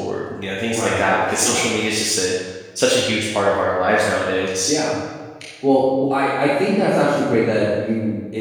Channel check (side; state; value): both; identical; correlation 1.00